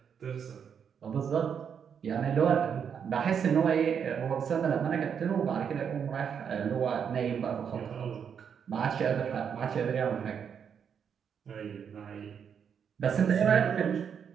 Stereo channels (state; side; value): quieter; left; 7.4 dB